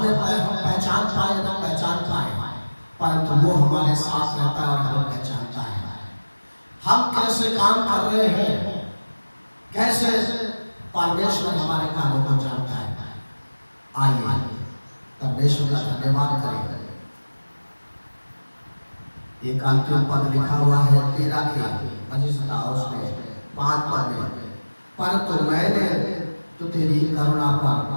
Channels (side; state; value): both; inverted; correlation -1.00